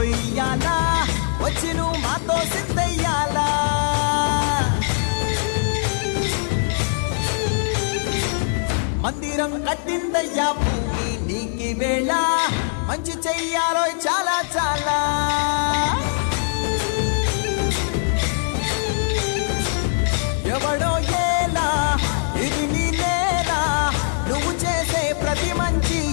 వచ్చి నువ్వు మాతో సిద్ధయ్యాలా మందిరం కట్టిందయ్యా భూమి నీకి వేళ మంచి చెయ్యాలో చాలా చాలా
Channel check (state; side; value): silent; right; digital silence